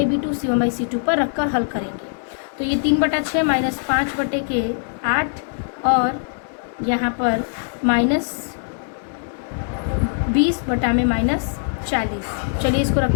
c1/c2 पर रखकर हल करेंगे। तो ये 3/6 माइनस 5 बटे के 8 और यहाँ पर माइनस 20 बटा में -40। चलिए इसको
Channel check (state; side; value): silent; right; 64 dB below the other